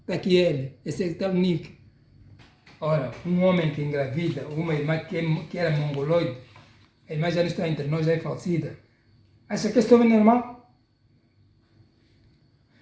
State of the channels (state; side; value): identical; both; correlation 1.00